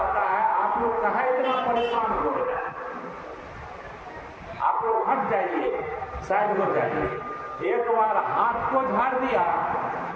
है, आप लोग कहाँ इतना परेशान हो रहे हैं, आप लोग हट जाइए, साइड हो जाइए। एक बार हाथ को झाड़ दिया,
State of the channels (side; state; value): both; identical; correlation 1.00